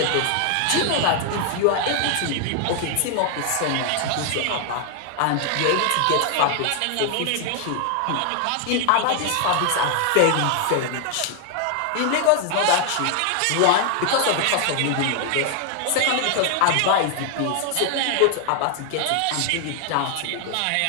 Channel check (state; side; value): different; both; correlation 0.00